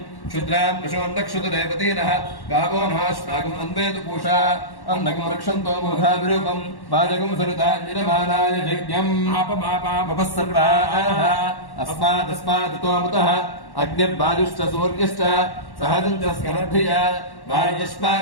క్షుద్రాన్ పశోన్నక్షుతదేవతీనః గావో నమాశ్వాగం అన్వేదు పూషా అన్నకం రక్షంతో మూఢావిరూపం వాజకం సరుతాన్యమానాయ యజ్ఞం. పాపమాపా सर्वाः अस्मादस्मादुतोमुतः अग्निर्वायुश्च सूर्यश्च सहजं च स्करद्भिया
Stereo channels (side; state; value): right; late; 1.1 ms